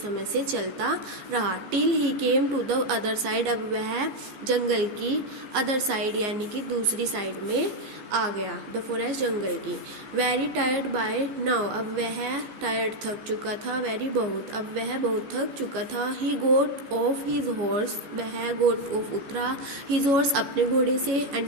से चलता रहा। Till he came to the other side अब वह जंगल की अदर साइड यानी कि दूसरी साइड में आ गया द फॉरेस्ट जंगल की। वेरी टायर्ड बाय नाउ अब वह टायर्ड थक चुका था वेरी बहुत अब वह बहुत थक चुका था। ही गोट ऑफ हिज हॉर्स वह गोट ऑफ उतरा हिज हॉर्स अपने घोड़े से एंड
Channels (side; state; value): left; late; 15 ms